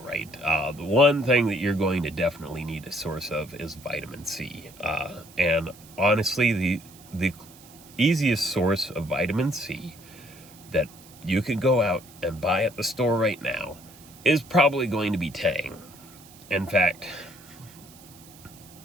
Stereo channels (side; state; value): right; noise; hiss, 22 dB below the sound